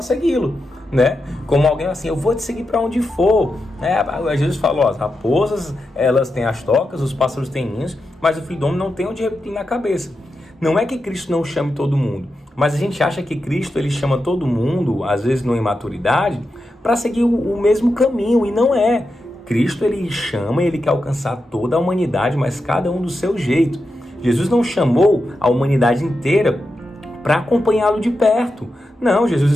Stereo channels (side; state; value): both; normal; correlation 0.88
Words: segui-lo, né? Como alguém assim: eu vou te seguir para onde for. Jesus falou: as raposas, elas têm as tocas, os pássaros têm ninhos, mas o filho do homem não tem onde repetir na cabeça. Não é que Cristo não chame todo mundo, mas a gente acha que Cristo, ele chama todo mundo, às vezes numa imaturidade, para seguir o mesmo caminho, e não é. Cristo, ele chama, ele quer alcançar toda a humanidade, mas cada um do seu jeito. Jesus não chamou a humanidade inteira para acompanhá-lo de perto. Não, Jesus